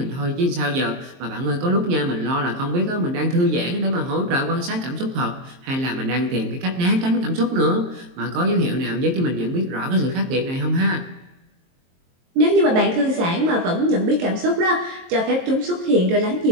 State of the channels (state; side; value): late; left; 23 ms